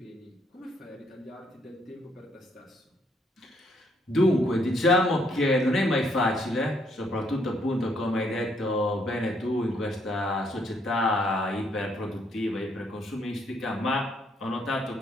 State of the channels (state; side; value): normal; both; correlation 0.71